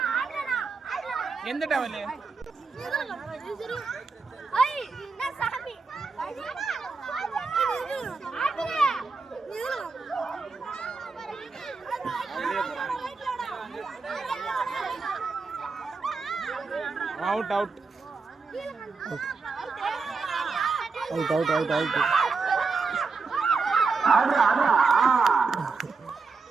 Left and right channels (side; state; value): left; quieter; 4.6 dB